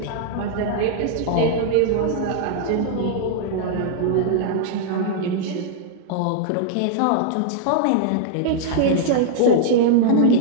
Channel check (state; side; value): different; both; correlation -0.01